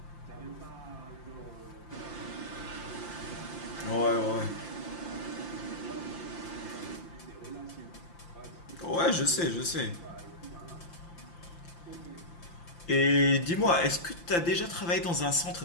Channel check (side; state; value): right; late; 5.8 ms